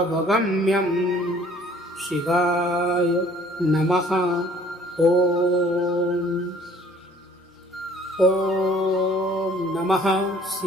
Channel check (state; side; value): normal; both; correlation 0.55